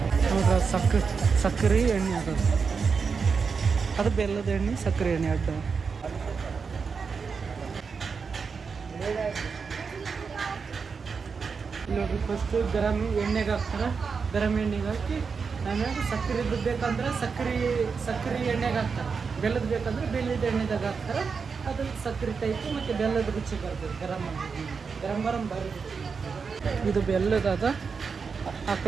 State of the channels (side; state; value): left; quieter; 5.4 dB